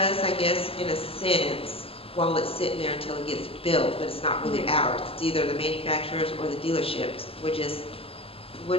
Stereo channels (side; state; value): right; late; 0.27 ms